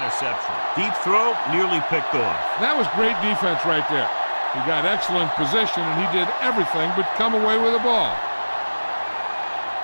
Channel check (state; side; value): inverted; both; correlation -1.00